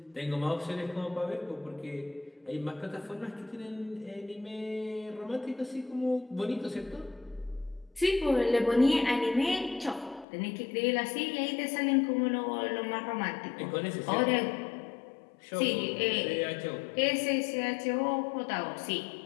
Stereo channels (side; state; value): right; drops out; at 10.2 s